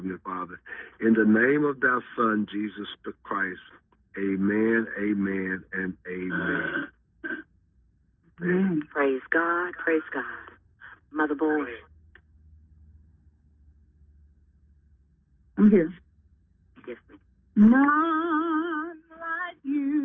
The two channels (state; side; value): identical; both; correlation 1.00